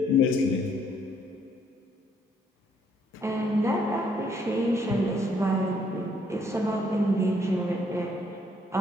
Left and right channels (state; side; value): normal; both; correlation 0.68